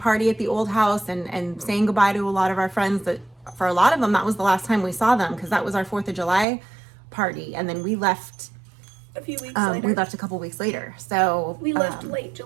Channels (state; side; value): drops out; left; at 6.5 s